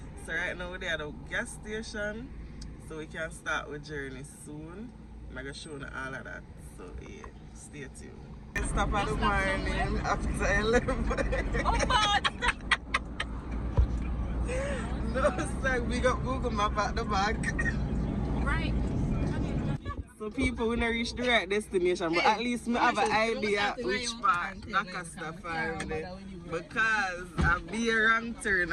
So right now we're at the gas station, so we can start with journey soon. I'm going to show you all of that, so yeah, stay tuned. I stop at the morning after 11. Oh God! No, sir, we got Google Map at the back. Right. So people will not reach the right destination, but at least I have an idea which part that can stop for me. Because I'll be a wrong turn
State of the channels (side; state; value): both; identical; correlation 1.00